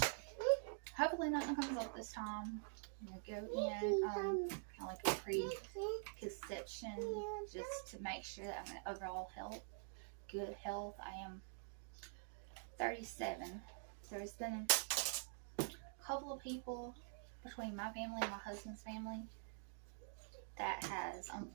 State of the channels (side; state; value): left; silent; digital silence